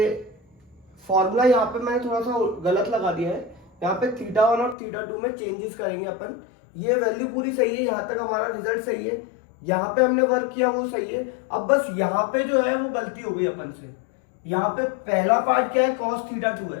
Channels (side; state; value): right; drops out; at 4.8 s